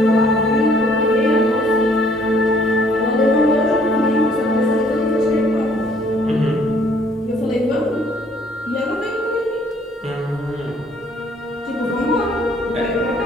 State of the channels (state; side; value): normal; both; correlation 0.62